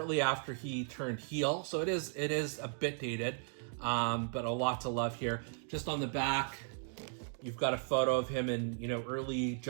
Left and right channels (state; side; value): silent; left; 54 dB below the other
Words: after he turned heel, so it is a bit dated, but a lot to love here. Just on the back, you've got a photo of him in early